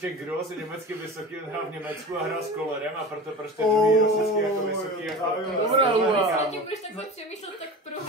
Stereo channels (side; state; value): both; normal; correlation 0.32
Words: Gros je německy vysoký, on hrál v Německu a hrál s Kolerem a proto prostě druhý Grosický jako vysoký jako... Dobrá, Když budeš takhle přemýšlet, tak